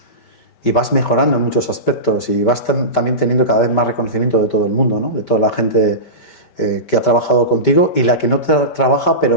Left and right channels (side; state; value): right; late; 5.1 ms